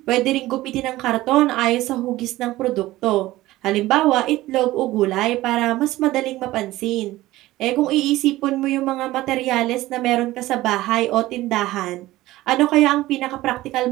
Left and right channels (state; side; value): quieter; left; 17.0 dB